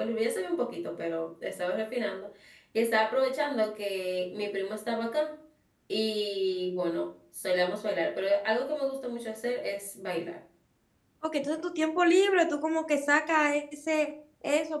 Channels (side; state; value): both; identical; correlation 1.00